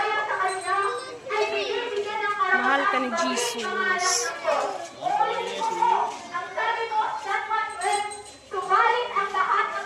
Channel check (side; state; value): both; identical; correlation 1.00